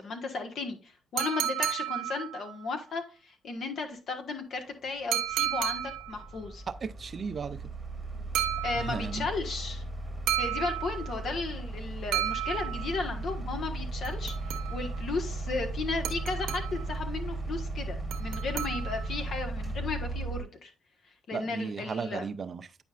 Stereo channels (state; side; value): normal; both; correlation 0.60